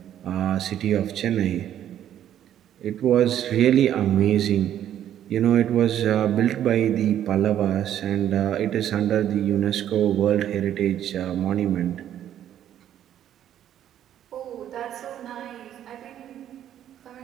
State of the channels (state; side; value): quieter; left; 10.9 dB